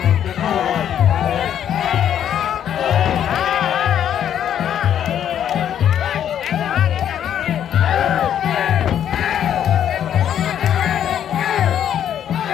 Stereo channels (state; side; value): quieter; right; 9.8 dB